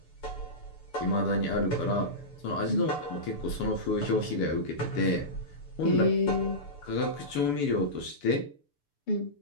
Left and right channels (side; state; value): right; late; 6.9 ms